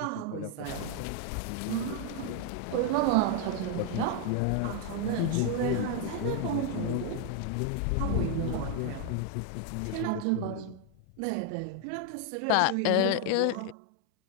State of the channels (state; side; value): different; both; correlation 0.00